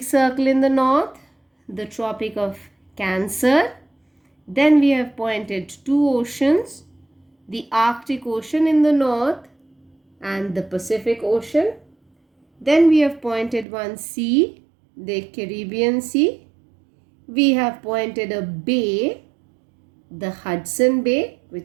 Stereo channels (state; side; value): drops out; left; at 13.7 s